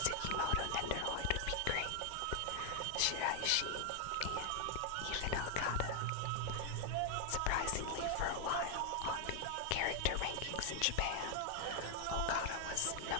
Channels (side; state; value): both; different; correlation 0.00